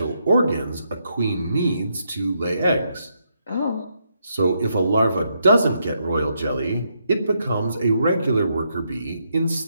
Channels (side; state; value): both; inverted; correlation -0.78